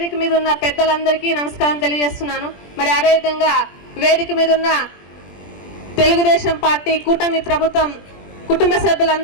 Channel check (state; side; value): late; right; 20 ms